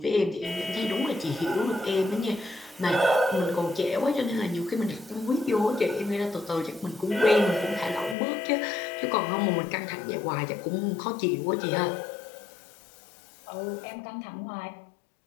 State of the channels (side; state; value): right; drops out; at 8.2 s